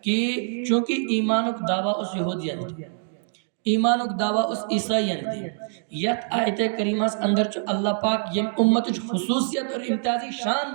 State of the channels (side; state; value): left; silent; digital silence